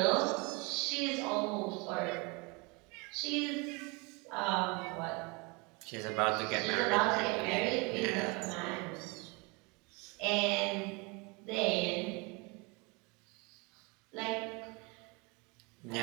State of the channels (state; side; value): quieter; left; 28.6 dB